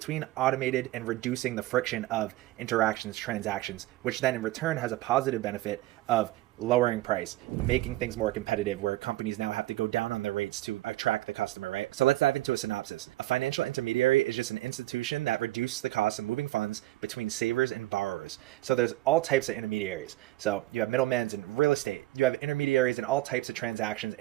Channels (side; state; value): left; quieter; 17.2 dB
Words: automated and reducing the friction of interactions, transactions, which then in return has a positive benefit of lowering price, making things more competitive where companies now have to go down on their rates to attract the customer, right? So let's dive into a synopsis. A financial intermediary is just an institution that reduces the cost of moving funds between savers and borrowers. So there's all types of intermediaries. So you have middlemen in real estate, you have intermediaries in all types of transactions,